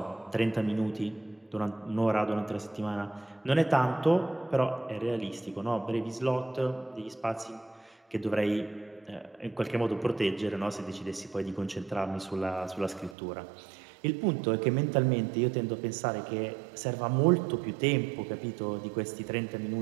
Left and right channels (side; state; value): left; drops out; at 13.2 s